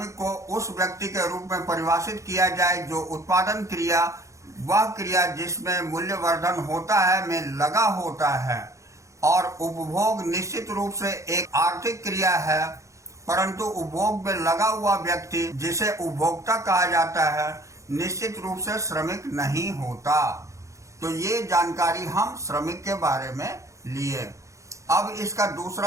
को उस व्यक्ति के रूप में परिभाषित किया जाए जो उत्पादन क्रिया, वह क्रिया जिसमें मूल्यवर्धन होता है, में लगा होता है। और उपभोग निश्चित रूप से एक आर्थिक क्रिया है, परंतु उपभोग में लगा हुआ व्यक्ति, जिसे उपभोक्ता कहा जाता है, निश्चित रूप से श्रमिक नहीं होता। तो ये जानकारी हम श्रमिक के बारे में लिए। अब इसका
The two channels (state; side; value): late; left; 0.15 ms